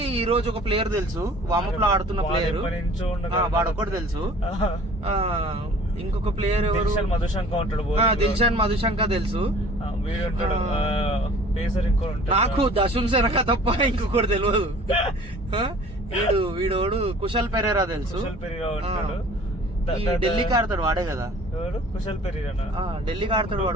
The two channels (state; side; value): normal; both; correlation 0.49